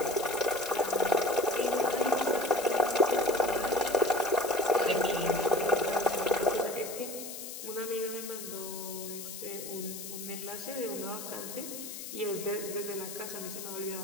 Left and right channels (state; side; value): noise; left; hiss, 9 dB below the sound